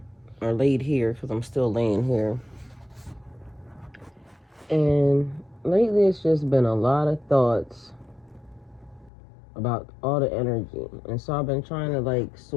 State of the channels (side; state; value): right; drops out; at 9.1 s